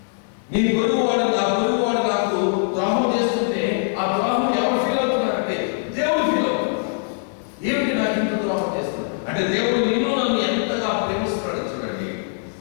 నీ పొరుగువాడు, నా పొరుగువాడు నాకు ద్రోహం చేస్తుంటే ఆ ద్రోహం ఎవరు ఫీల్ అవుతున్నారంటే దేవుడు ఫీల్ అవుతున్నాడు. ఏమిటి నాకు ఇంత ద్రోహం చేస్తున్నాడు అంటే దేవుడు నిన్ను నన్ను ఎంతగా ప్రేమిస్తున్నాడు. చూడండి,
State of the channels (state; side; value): silent; right; digital silence